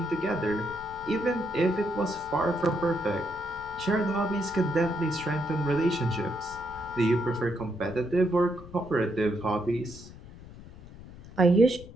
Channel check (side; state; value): left; noise; rumble, 17 dB below the sound